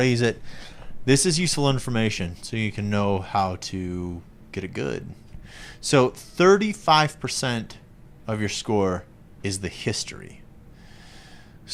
it, this is useful information so you can know how to get it good. So, 35% of your score is the history.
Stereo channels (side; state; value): both; identical; correlation 1.00